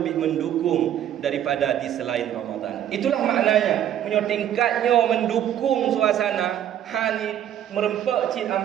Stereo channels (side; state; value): left; quieter; 10.8 dB